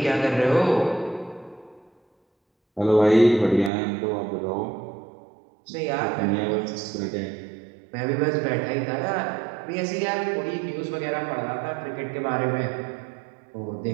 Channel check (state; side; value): drops out; left; at 3.7 s